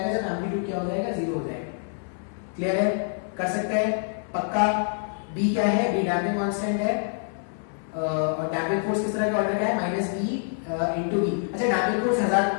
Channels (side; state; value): right; silent; digital silence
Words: जब एम्पलीट्यूड क्या हो जाएगा? 0 हो जाएगा। क्लियर है? कर सकते हैं पक्का। b क्या है? b डैम्पिंग कांस्टेंट है और डैम्पिंग फोर्स किस तरह के ऑर्डर का है? -b into v। अच्छा, डैम्पिंग फोर्स हजार